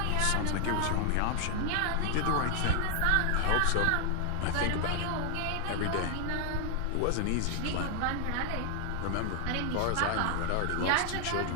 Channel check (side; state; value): both; different; correlation 0.00